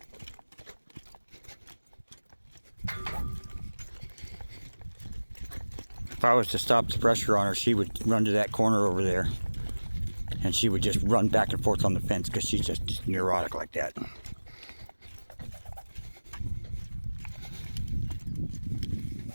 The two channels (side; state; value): both; inverted; correlation -1.00